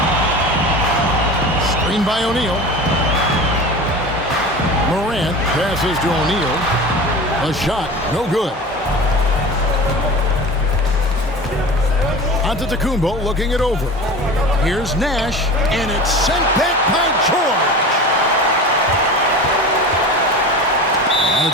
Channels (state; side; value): normal; both; correlation 0.33